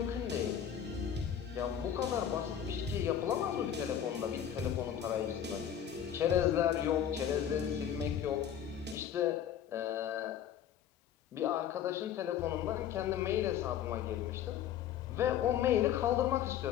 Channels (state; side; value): quieter; right; 9.6 dB